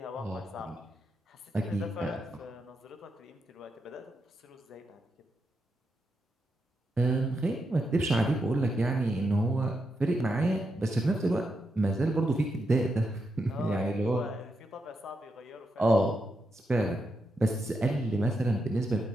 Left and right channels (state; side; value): normal; both; correlation 0.84